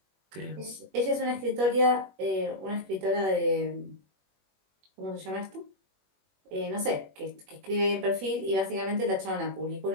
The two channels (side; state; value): left; late; 21 ms